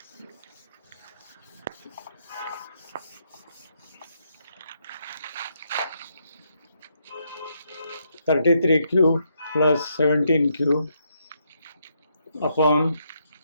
(33 cube plus 17 cube upon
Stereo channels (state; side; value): inverted; both; correlation -0.77